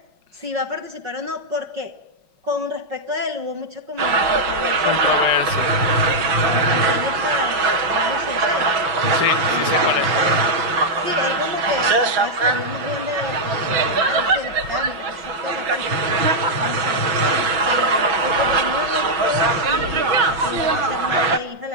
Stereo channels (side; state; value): left; late; 5.4 ms